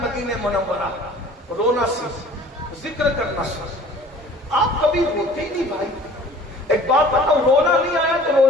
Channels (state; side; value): normal; both; correlation 0.49